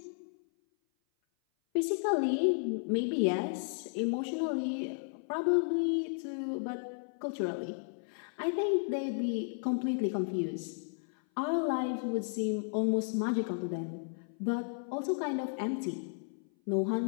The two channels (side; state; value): right; silent; 55 dB below the other